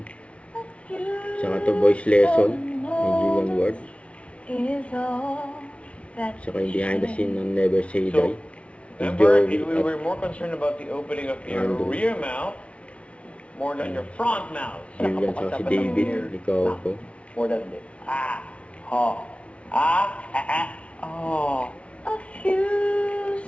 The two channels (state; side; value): late; right; 0.062 ms